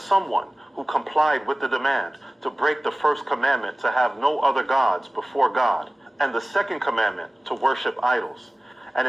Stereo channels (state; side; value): normal; both; correlation 0.97